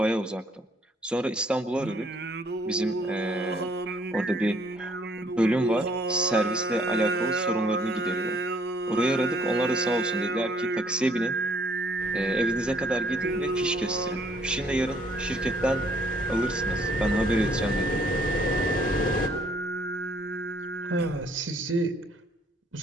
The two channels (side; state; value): both; normal; correlation 0.64